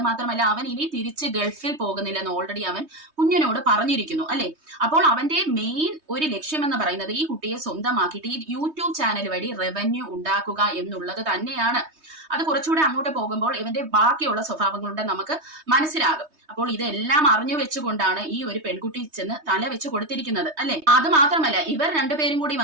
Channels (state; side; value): late; left; 3.2 ms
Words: മാത്രമല്ല അവൻ ഇനി തിരിച്ച് ഗൾഫിൽ പോകുന്നില്ലെന്ന് ഓൾറെഡി അവൻ കുഞ്ഞിനോട് പറഞ്ഞിരിക്കുന്നു അല്ലെ. അപ്പോൾ അവന്റെ മെയിൻ ഒരു ലക്ഷ്യം എന്ന് പറയുന്നത് ഈ കുട്ടിയെ സ്വന്തമാക്കിയിട്ട് ഈ യൂട്യൂബ് ചാനൽ വഴി റവന്യൂ ഉണ്ടാക്കുക എന്നുള്ളത് തന്നെയാണ്. അത് കുറച്ചുകൂടെ അങ്ങോട്ട് പോകുമ്പോൾ ഇവന്റെ ബാക്കിയുള്ള സ്വഭാവങ്ങളുടെ നമുക്ക് മനസ്സിലാകും. അപ്പോൾ ഇതെല്ലാം അറിഞ്ഞു വെച്ചുകൊണ്ടാണ് ഈ ഒരു പെൺകുട്ടി ചെന്ന് തല വെച്ച് കൊടുത്തിരിക്കുന്നത് അല്ലെ. അത് മാത്രമല്ല ഇവർ രണ്ടുപേരും കൂടി